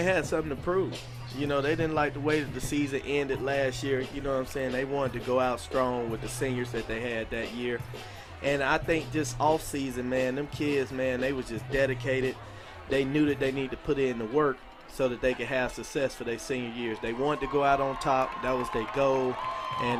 had something to prove. You know, they didn't like the way that the season ended last year. You know what I'm saying? They wanted to go out strong with the seniors that they had that year. And I think just off season, man, them kids, man, they was just dedicated. They knew that they needed to put in the work so that they could have success for their senior years. They wanted to go out on top. That was their goal.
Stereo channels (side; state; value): both; identical; correlation 1.00